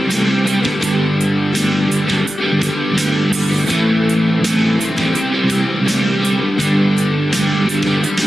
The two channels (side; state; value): both; normal; correlation 0.92